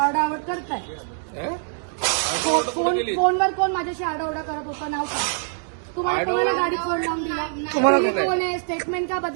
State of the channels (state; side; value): silent; left; digital silence